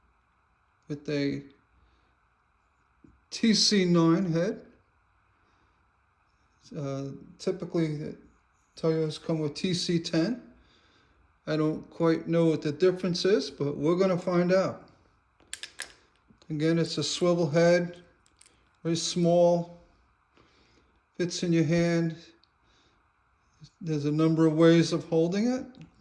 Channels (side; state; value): both; identical; correlation 1.00